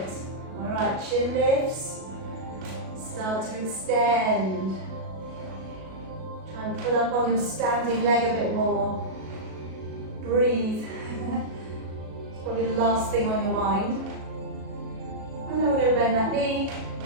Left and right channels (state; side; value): late; left; 37 ms